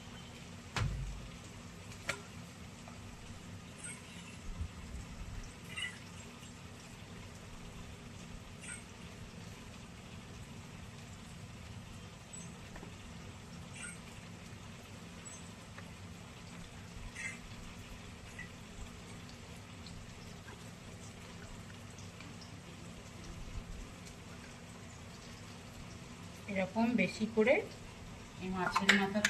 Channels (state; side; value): identical; both; correlation 1.00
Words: এরকম বেশি করে এই মাছের